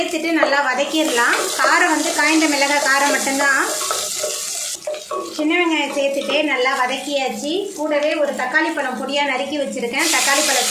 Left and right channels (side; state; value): both; identical; correlation 1.00